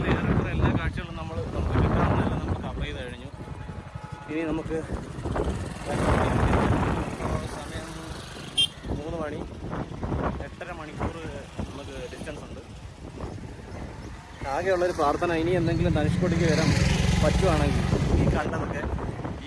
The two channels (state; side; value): identical; both; correlation 1.00